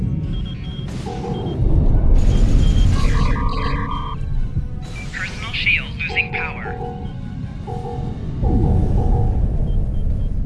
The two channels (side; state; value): both; identical; correlation 1.00